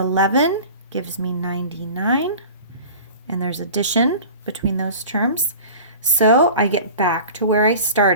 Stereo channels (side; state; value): both; inverted; correlation -0.39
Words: gives me 99, and there's addition between those terms. So I get back to where I